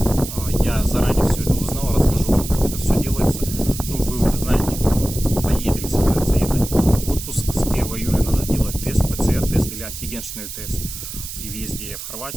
Я заранее все это узнал, расскажу вам, как это все делается. Ну, вы уже знаете, кто поедет или собирается ехать в отпуск. С 1 июля надо делать тест, ПЦР-тест или антигенный тест. При въезде в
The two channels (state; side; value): noise; right; hiss, 9 dB below the sound